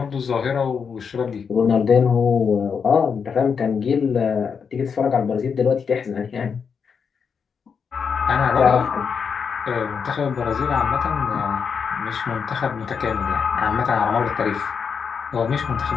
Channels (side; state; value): right; quieter; 6.3 dB